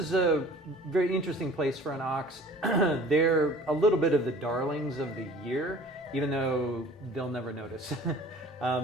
a very interesting place for an ox. They're a little bit of the darlings of the year, even though they'll never notice.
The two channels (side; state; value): both; normal; correlation 0.47